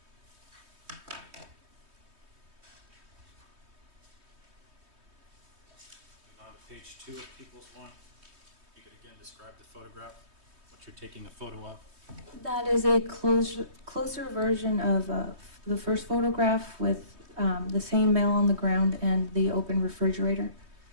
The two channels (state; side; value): late; left; 3.2 ms